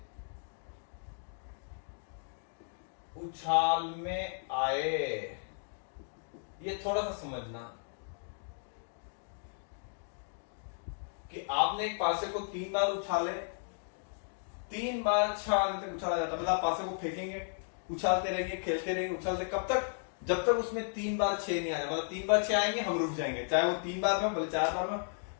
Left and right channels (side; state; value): right; silent; digital silence